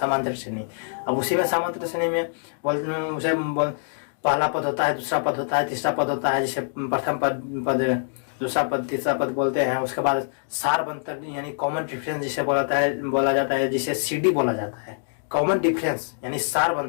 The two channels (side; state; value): right; silent; digital silence